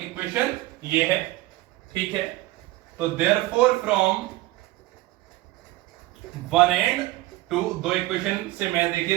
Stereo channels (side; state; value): left; quieter; 18.4 dB